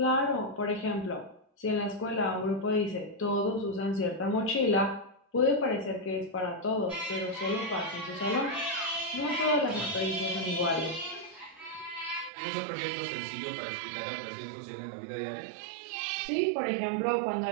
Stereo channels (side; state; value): left; drops out; at 12.3 s